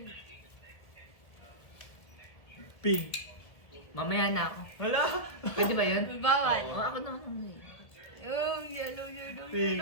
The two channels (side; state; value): right; late; 1.5 ms